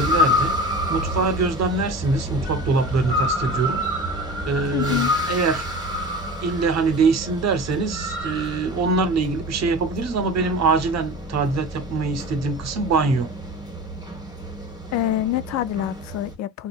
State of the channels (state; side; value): normal; both; correlation 0.34